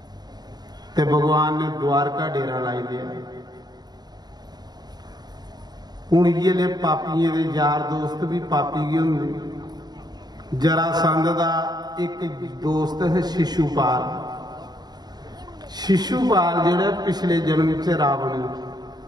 ते भगवान ने द्वारका डेरा लाई दिया। हूँ ये पापियों के यार दोस्त भी पापी ही होंगे। जरासंध का एक दोस्त है शिशुपाल, शिशुपाल जिहड़ा पिछले जन्म च रावण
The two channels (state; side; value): late; left; 0.20 ms